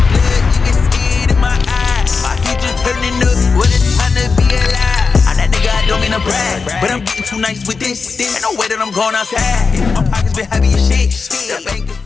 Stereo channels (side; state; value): right; quieter; 4.8 dB